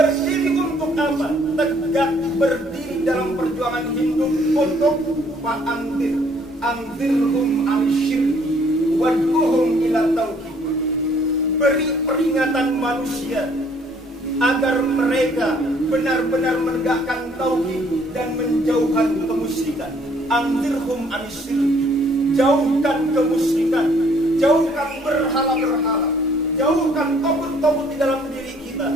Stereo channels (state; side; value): normal; both; correlation 0.62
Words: untuk apa? Tegak berdiri dalam perjuangan hidup untuk fa'anzir, anzirhum al-syirki wad'uhum ila tauhid. Beri peringatan manusia agar mereka benar-benar menegakkan tauhid dan menjauhkan kemusyrikan. Anzirhum an-syirki, jauhkan kemusyrikan, jauhkan berhala-berhala, jauhkan togut-togut di dalam diri kita.